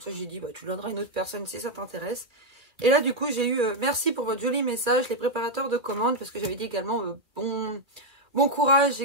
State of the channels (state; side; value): late; left; 2.1 ms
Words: ça, j'ai dit, bah, tu le donneras à une autre personne si ça t'intéresse. Et là, du coup, j'ai eu merci pour votre joli message, les préparateurs de commandes. Parce que j'avais dit également bon courage,